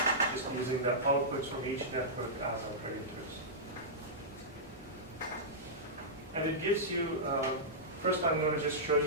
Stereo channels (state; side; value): normal; both; correlation -0.13